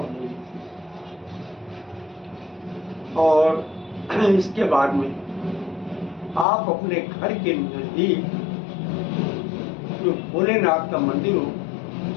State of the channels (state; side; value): drops out; right; at 6.5 s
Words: ले लीजिए। और इसके बाद में आप अपने घर के नजदीक जो भोलेनाथ का मंदिर हो,